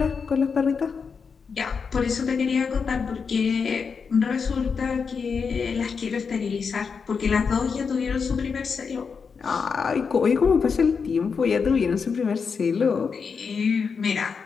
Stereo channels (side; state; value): right; quieter; 5.7 dB